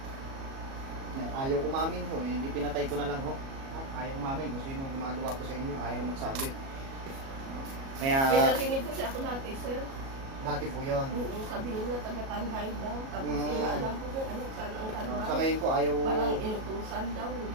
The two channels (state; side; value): late; left; 37 ms